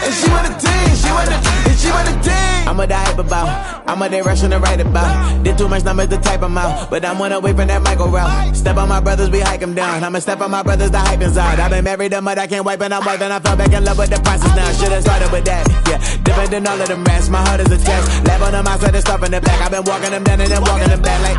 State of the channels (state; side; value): identical; both; correlation 1.00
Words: And she want a team. She want a team. I'm a die about. I'm a direction to write about. Did too much numbers to type them out. But I'm one away from that Michael route. Step on my brothers, we hike them down. I'ma step on my brothers, the hype inside. I've been married them, but I can't wipe it out more than I fell back in love with the process now. Should've started with that. Yeah, different than all of them rats. My heart is a test. Lab on them outside and stuff in the back. I've been walking them down and then walking them back like